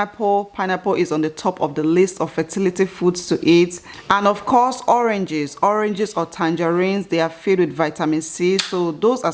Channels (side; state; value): both; identical; correlation 1.00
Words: Pineapple is on the top of the list of fertility foods to eat. And of course, oranges. Oranges or tangerines, they are filled with vitamin C. So those are